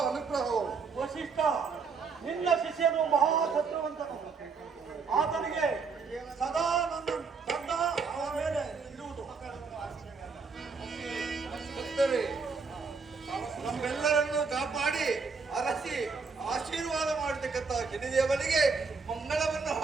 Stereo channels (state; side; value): quieter; left; 5.0 dB